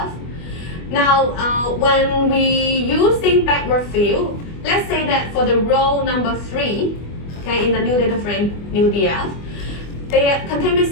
Now, when we using backward fill, let's say that for the row number 3, okay, in the new data frame, new DF, they contain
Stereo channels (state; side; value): late; right; 24 ms